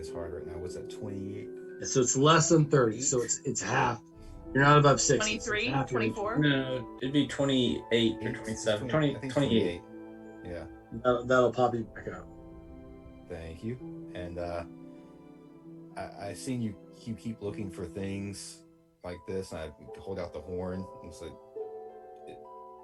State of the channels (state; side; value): identical; both; correlation 1.00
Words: is hard right now. What's that? 28. So it's less than 30. So it's half. You're not above 60. 23, It's half your 24. No, it'd be 28 or 27. 20, I think 28. Yeah. HP. That'll pop you back up. Thank you. And I seen you keep looking for things like this, and I hold out the horn. And it's like,